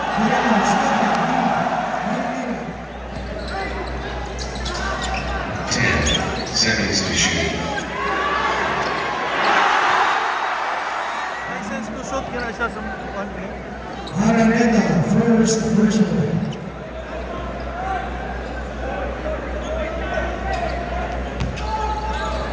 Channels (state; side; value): identical; both; correlation 1.00